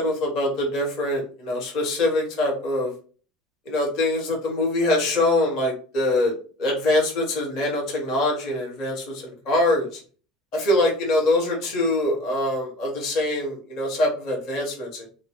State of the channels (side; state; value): both; normal; correlation 0.40